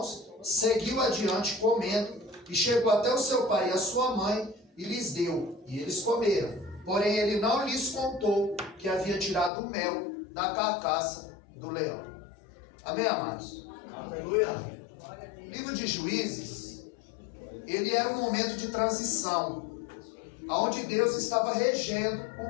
seguiu adiante comendo, e chegou até o seu pai e a sua mãe, e lhes deu, e eles comeram. Porém ele não lhes contou que havia tirado o mel da carcaça do leão. Amém, amados? Aleluia. O livro de Juízes, ele era um momento de transição, onde Deus estava regendo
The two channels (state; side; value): drops out; right; at 9.5 s